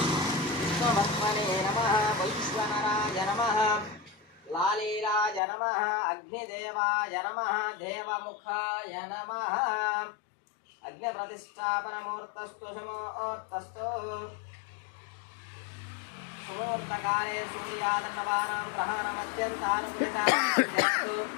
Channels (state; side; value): drops out; right; at 5.4 s